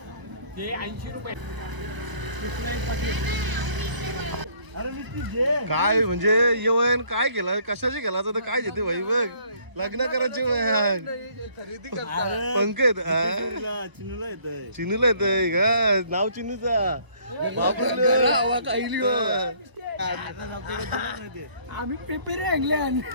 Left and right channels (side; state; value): left; late; 1.0 ms